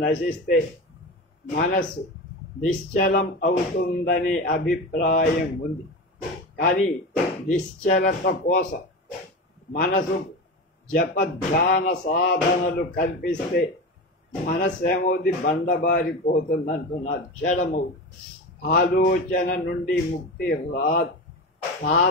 నశిస్తే మనస్సు నిశ్చలం అవుతుందనే అభిప్రాయం ఉంది. కానీ నిశ్చలత కోసం మనసు ధ్యాన సాధనలు కల్పిస్తే మనస్సు ఏమవుతుంది? బండబారిపోతుందంటున్నారు, జడమవుతుంది. ఆలోచన నుండి ముక్తి రాదు.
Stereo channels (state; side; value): normal; both; correlation 0.25